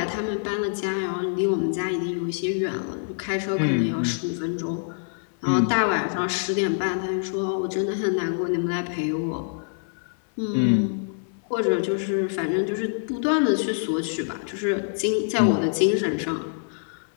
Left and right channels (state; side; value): silent; right; 61 dB below the other